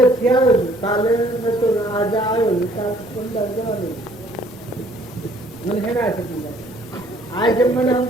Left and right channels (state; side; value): normal; both; correlation 0.60